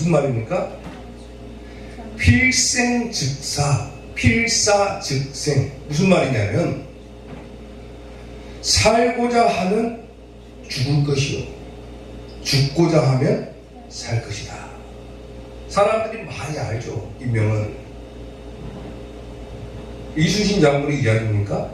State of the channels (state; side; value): identical; both; correlation 1.00